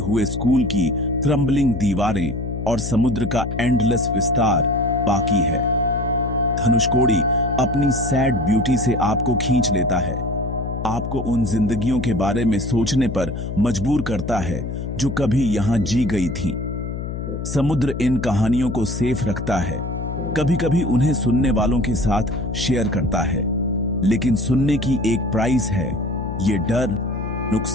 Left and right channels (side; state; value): left; noise; hum, 5 dB below the sound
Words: स्कूल की क्रम्बलिंग दीवारें और समुद्र का एंडलेस विस्तार बाकी है। धनुषकोडी अपनी सैड ब्यूटी से आपको खींच लेता है, आपको उन जिंदगियों के बारे में सोचने पर मजबूर करता है जो कभी यहां जी गई थी। समुद्र इन कहानियों को सेफ रखता है, कभी कभी उन्हें सुनने वालों के साथ शेयर करता है, लेकिन सुनने की एक प्राइस है। ये डर,